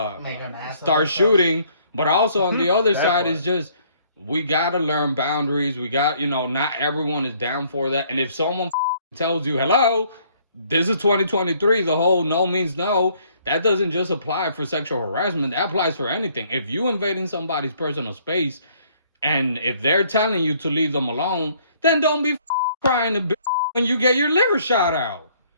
Make an ass of start ourselves. shooting. But also on the other That side part. is just, we got to learn boundaries. We got, you know, not everyone is down for that. And if someone tells you, hello, this is 2023, the whole no means no, that doesn't just apply for sexual harassment. That applies for anything. If you invading somebody's personal space and if they're telling you to leave them alone, then don't be crying to when you get your liver shot out.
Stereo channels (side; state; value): both; inverted; correlation -0.63